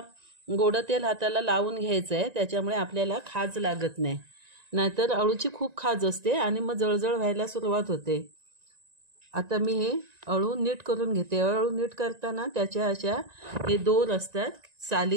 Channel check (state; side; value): late; left; 1.9 ms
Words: गोड तेल हाताला लावून घ्यायचं आहे, त्याच्यामुळे आपल्याला खाज लागत नाही। नाहीतर अळूची खूप खाज असते आणि मग जळजळ व्हायला सुरुवात होते। आता मी हे अळू नीट करून घेते। अळू नीट करताना त्याच्या अशा हे दोर असतात